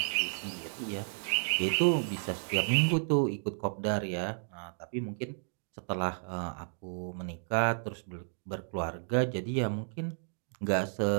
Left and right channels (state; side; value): silent; left; digital silence